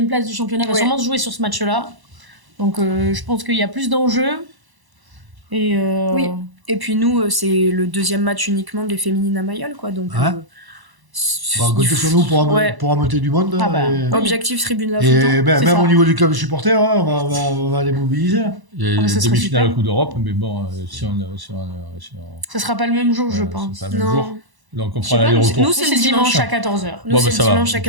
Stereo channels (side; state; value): left; late; 1.0 ms